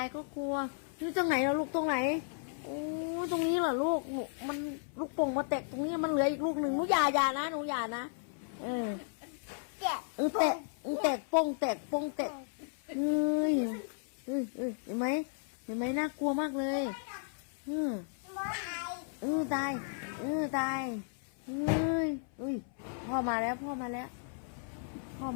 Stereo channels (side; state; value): right; silent; 55 dB below the other